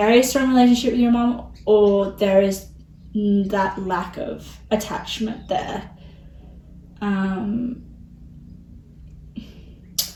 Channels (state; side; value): identical; both; correlation 1.00